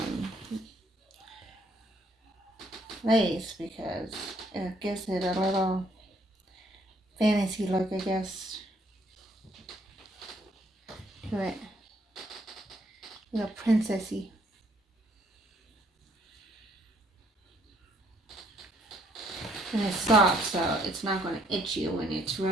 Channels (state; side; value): normal; both; correlation 0.67